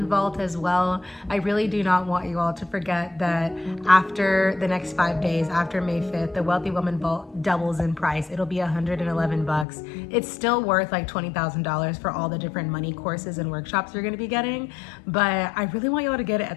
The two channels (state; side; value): drops out; right; at 9.7 s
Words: Vault as well. I really do not want you all to forget that after the next 5 days, after May 5th, the Wealthy Woman Vault doubles in price. It'll be $111. It's still worth like $20,000 for all the different money courses and workshops you're gonna be getting, but I really want you all to get it